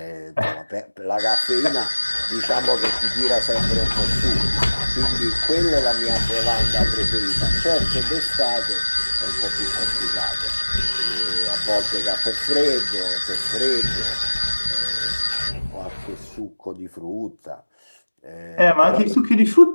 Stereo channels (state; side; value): inverted; both; correlation -1.00